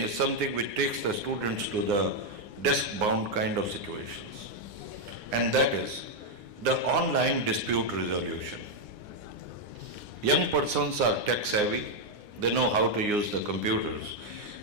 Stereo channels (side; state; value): left; late; 9.7 ms